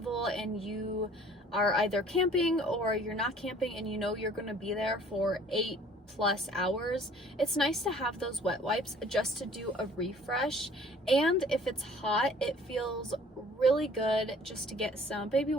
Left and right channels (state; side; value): normal; both; correlation 0.53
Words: and you are either camping or you're not camping, and you know you're going to be there for 8 plus hours, it's nice to have those wet wipes just to do a refresh. And if it's hot, it feels really good just to get some baby